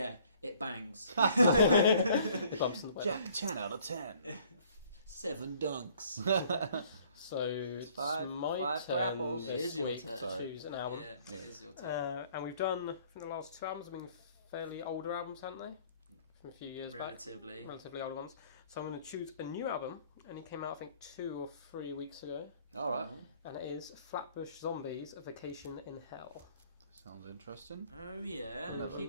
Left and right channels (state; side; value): inverted; both; correlation -0.57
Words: it bangs. Bumps in the way. Jack, 10 out of 10. 7 dunks. So it's five grapples. It is your turn. To choose an album. Yeah, it is your turn. And we've done, from the last 2 albums, have been fairly older albums, haven't they? From a few years back. Relatively older ones. So I'm going to choose a new album, and it came out I think 2 or 3 weeks ago. Alright. And it is Flatbush Zombies, A Vacation in Hell. Sounds interesting. Oh yeah, I